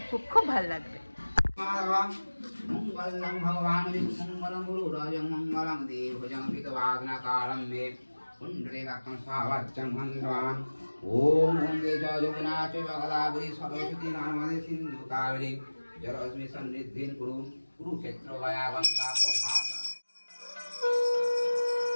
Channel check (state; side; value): inverted; both; correlation -1.00